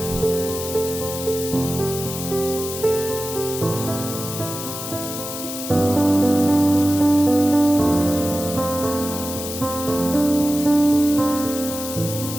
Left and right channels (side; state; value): left; noise; hiss, 7 dB below the sound